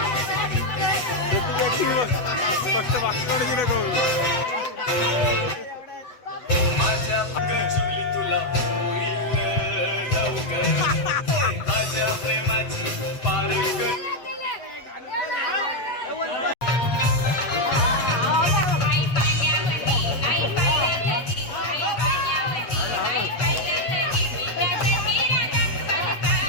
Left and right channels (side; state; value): right; late; 7.8 ms